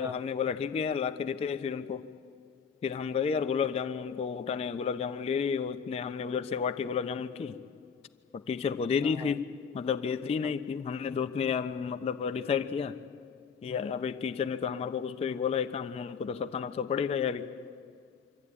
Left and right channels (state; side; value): quieter; right; 6.2 dB